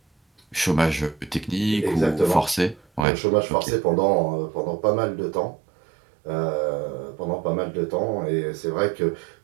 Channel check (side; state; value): left; drops out; at 3.1 s